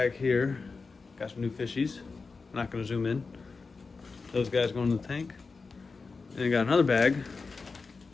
here. Got some new fishies. I'm not going to zoom in. Those guys going in the tank. And I got another bag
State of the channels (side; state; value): right; quieter; 4.4 dB